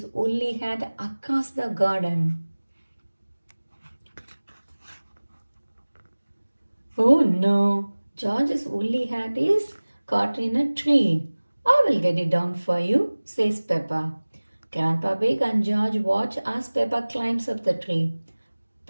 woolly hat across the garden. Oh no! George's woolly hat is caught in a tree. I will get it down for you, says Peppa. Grandpa Pig and George watch as Peppa climbs up the tree.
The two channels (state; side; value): inverted; both; correlation -1.00